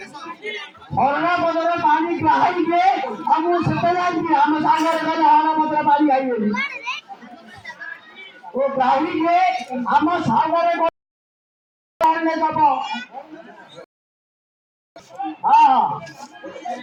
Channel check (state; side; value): identical; both; correlation 1.00